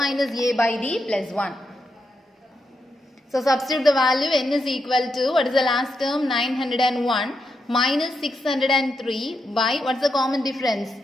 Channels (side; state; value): both; normal; correlation 0.84